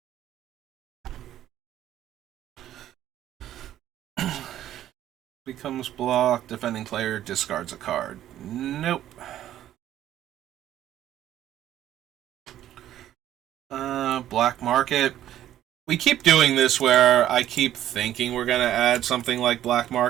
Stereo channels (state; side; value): quieter; left; 12.2 dB